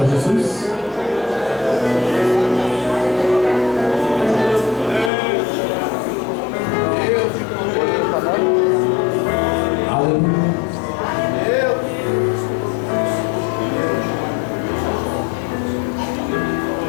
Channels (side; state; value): right; drops out; at 5.1 s